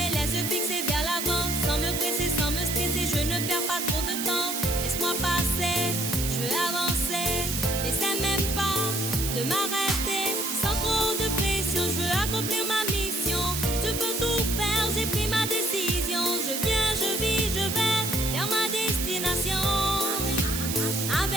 laisse fixer vers l'avant, sans me presser, sans me stresser, je ne perds pas trop de temps. Laisse-moi passer, je veux avancer, n'essaie même pas de m'arrêter. Sans trop de pression, je veux accomplir ma mission. Tu peux tout faire, j'ai pris ma décision. Je viens, je vis, je vais vers ma destination.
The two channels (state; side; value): noise; right; hiss, 3 dB below the sound